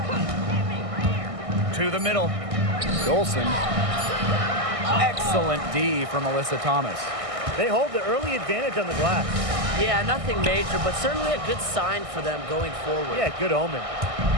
To the middle. Dolson. Excellent D from Alyssa Thomas. They hold the early advantage on the glass. Yeah, nothing major, but certainly a good sign for them going forward. Yeah, good omen.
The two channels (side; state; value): left; late; 1.6 ms